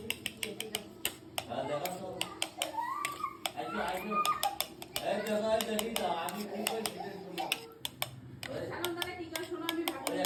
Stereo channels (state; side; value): identical; both; correlation 1.00